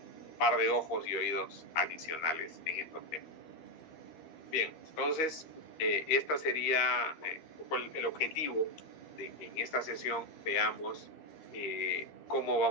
par de ojos y oídos adicionales en estos temas. Bien, entonces, esta sería el objetivo de que en esta sesión veamos cómo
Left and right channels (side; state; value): right; late; 13 ms